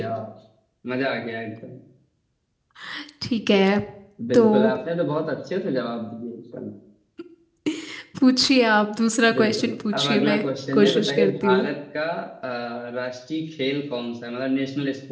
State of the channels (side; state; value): both; identical; correlation 1.00